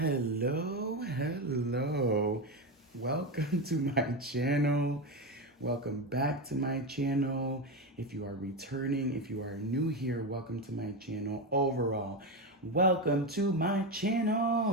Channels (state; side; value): normal; both; correlation 0.15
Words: Welcome to my channel. Welcome back to my channel. If you are returning, if you are new here, welcome to my channel. Overall, welcome to my